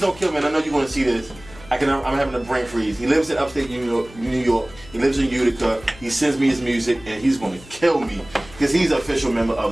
kill me. And I know you're gonna see this. I'm having a brain freeze. He lives in upstate New York. He lives in Utica. He sends me his music, and he's gonna kill me because he's an official member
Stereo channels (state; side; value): noise; left; hum, 20 dB below the sound